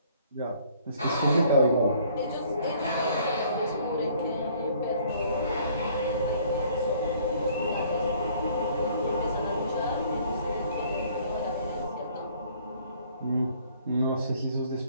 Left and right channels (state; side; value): inverted; both; correlation -0.59